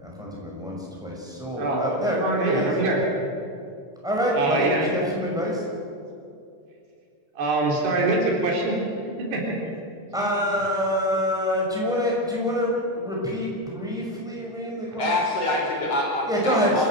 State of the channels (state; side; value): normal; both; correlation 0.11